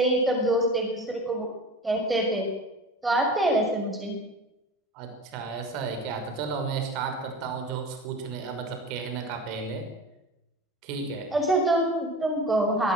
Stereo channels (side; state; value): both; normal; correlation 0.34